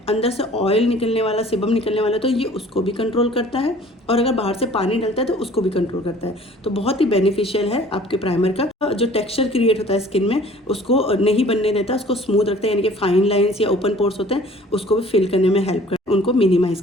अंदर से ऑयल निकलने वाला, सेबम निकलने वाला, तो ये उसको भी कंट्रोल करता है और अगर बाहर से पानी डलता है तो उसको भी कंट्रोल करता है। तो बहुत ही बेनिफिशियल है आपके प्राइमर का। जो टेक्सचर क्रिएट होता है स्किन में उसको नहीं बनने देता, उसको स्मूथ रखता है, यानी कि फाइन लाइंस या ओपन पोर्स होते हैं उसको भी फिल करने में हेल्प करता है, उनको मिनिमाइज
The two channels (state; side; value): normal; both; correlation 0.51